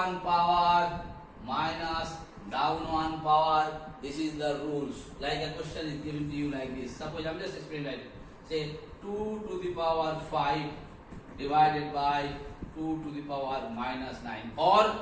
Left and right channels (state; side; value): identical; both; correlation 1.00